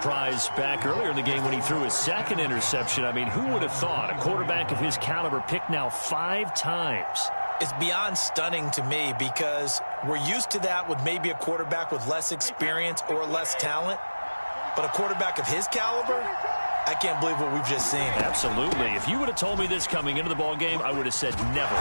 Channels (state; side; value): inverted; both; correlation -1.00